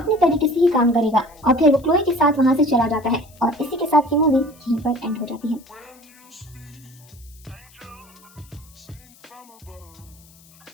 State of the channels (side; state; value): left; noise; hiss, 26 dB below the sound